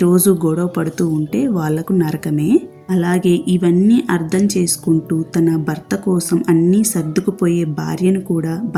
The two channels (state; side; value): identical; both; correlation 1.00